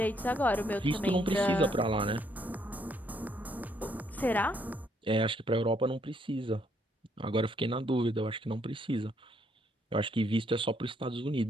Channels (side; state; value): both; normal; correlation 0.71